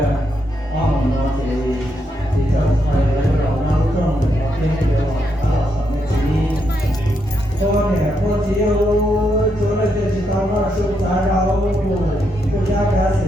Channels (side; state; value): both; normal; correlation 0.80